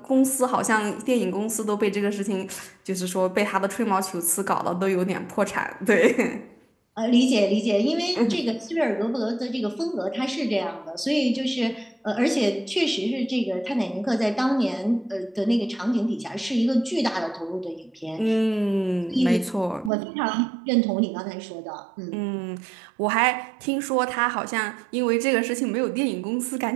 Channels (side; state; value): left; drops out; at 19.9 s